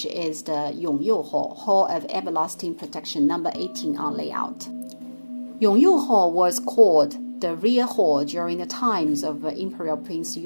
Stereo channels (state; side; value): inverted; both; correlation -1.00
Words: is the Yonghe Hall of Everlasting Protection, number 18 on layout. Yonghe Hall was called the rear hall during the times of Imperial Prince